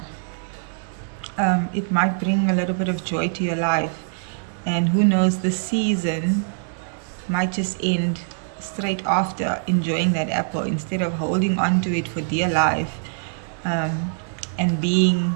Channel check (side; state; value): left; silent; digital silence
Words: It might bring a little bit of joy to your life. And who knows, the season might just end straight after enjoying that apple, instead of holding on to it for dear life, and